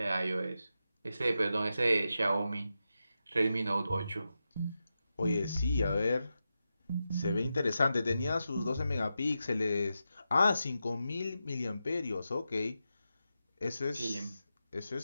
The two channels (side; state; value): both; inverted; correlation -0.89